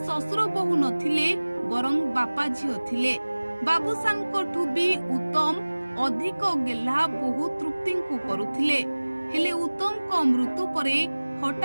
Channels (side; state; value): both; inverted; correlation -1.00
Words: ଶ୍ୱଶୁର ବୋହୂ ନଥିଲେ, ବରଂ ବାପା ଝିଅ ଥିଲେ। ବାବୁସାନଙ୍କଠୁ ବି ଉତ୍ତମ ଅଧିକ ଗେହ୍ଲା ବୋହୂ ତୃପ୍ତିଙ୍କୁ କରୁଥିଲେ। ହେଲେ ଉତ୍ତମଙ୍କ ମୃତ୍ୟୁ ପରେ